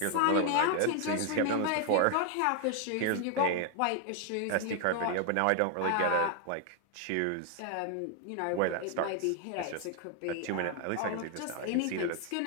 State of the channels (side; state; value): both; different; correlation 0.01